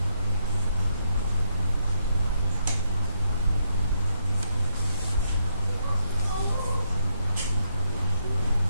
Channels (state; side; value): inverted; both; correlation -0.77